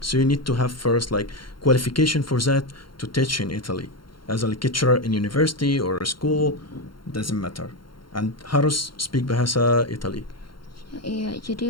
you need to have first like qualification for that to teach in Italy as a lecturer in university or a school, doesn't matter. And harus speak bahasa Italy. Iya,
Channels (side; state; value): right; late; 0.73 ms